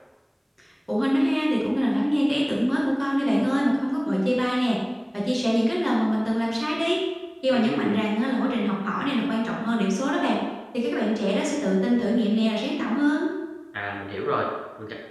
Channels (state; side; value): identical; both; correlation 1.00